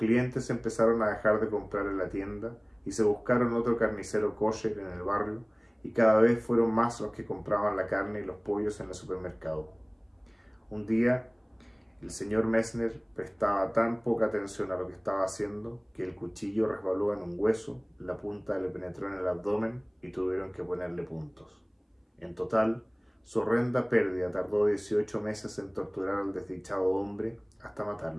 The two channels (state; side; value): identical; both; correlation 1.00